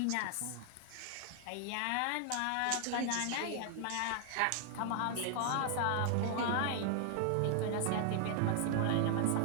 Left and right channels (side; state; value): both; different; correlation 0.00